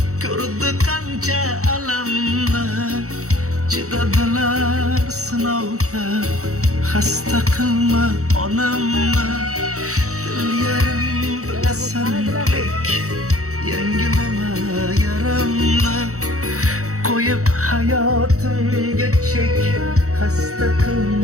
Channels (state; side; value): late; left; 0.65 ms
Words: ko'rdi qancha alamni. Chidadilar sinovga, xasta qilma onamni. Dil yarim bilasan lek, yangilama yaramni. Qo'yib hayotimga chek, xasta